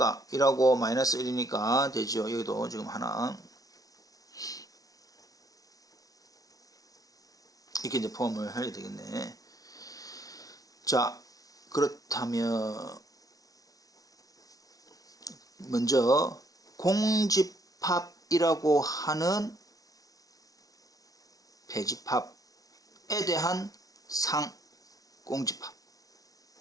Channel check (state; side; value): late; right; 0.18 ms